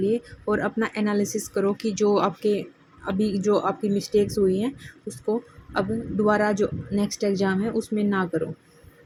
और अपना एनालिसिस करो कि जो आपकी मिस्टेक्स हुई हैं उसको अब दोबारा जो नेक्स्ट एग्ज़ाम है उसमें ना करो।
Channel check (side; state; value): both; identical; correlation 1.00